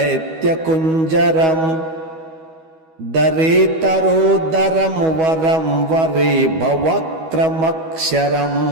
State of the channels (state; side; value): late; left; 12 ms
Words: दरेतरोदरं वरं वरे भवक्रमक्षरम्